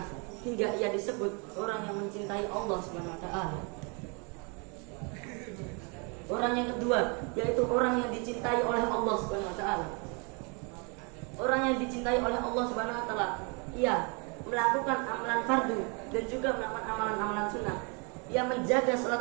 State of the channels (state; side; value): quieter; left; 33.8 dB